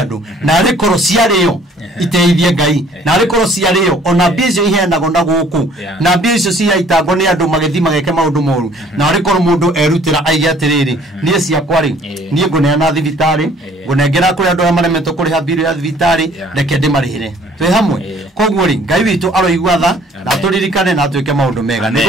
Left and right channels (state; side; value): normal; both; correlation 0.56